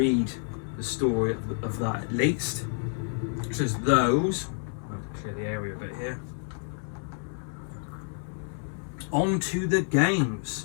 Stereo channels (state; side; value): silent; right; 59 dB below the other